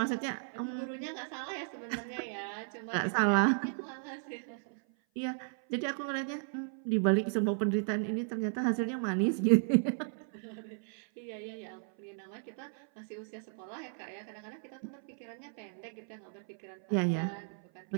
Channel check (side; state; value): left; silent; 55 dB below the other